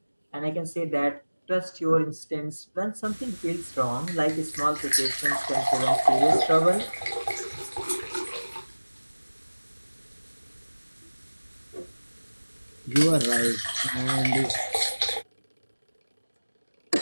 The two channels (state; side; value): inverted; both; correlation -1.00